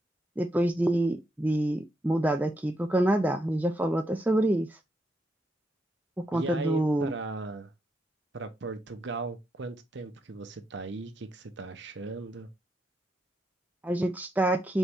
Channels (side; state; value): both; normal; correlation 0.81